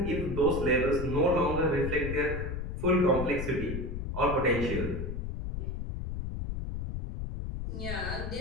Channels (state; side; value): noise; left; rumble, 4 dB below the sound